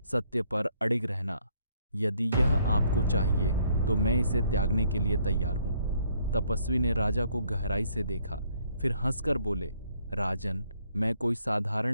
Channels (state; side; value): inverted; both; correlation -0.67